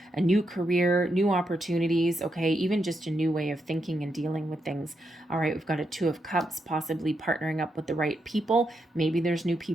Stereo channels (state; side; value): normal; both; correlation 0.82